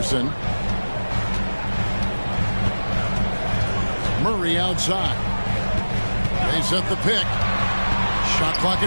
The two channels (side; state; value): both; inverted; correlation -1.00